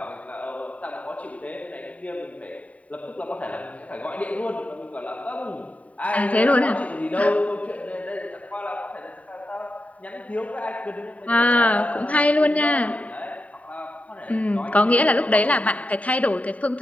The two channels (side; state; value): right; late; 0.068 ms